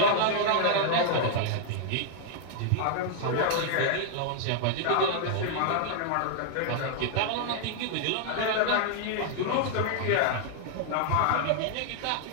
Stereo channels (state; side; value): different; both; correlation -0.01